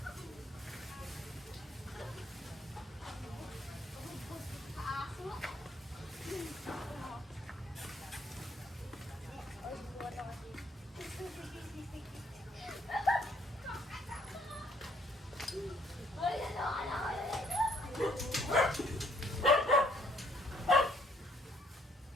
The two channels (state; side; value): normal; both; correlation 0.64